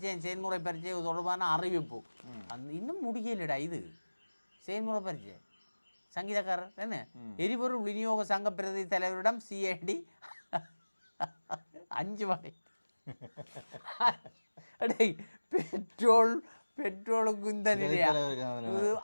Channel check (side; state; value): both; inverted; correlation -1.00